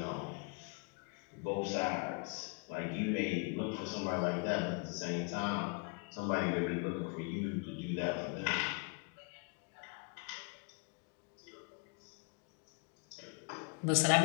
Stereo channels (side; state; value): right; quieter; 34.6 dB